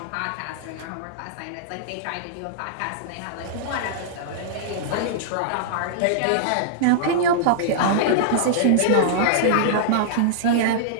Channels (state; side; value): different; both; correlation -0.02